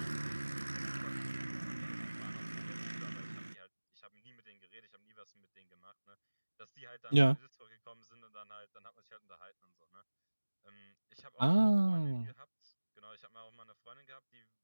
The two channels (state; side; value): inverted; both; correlation -1.00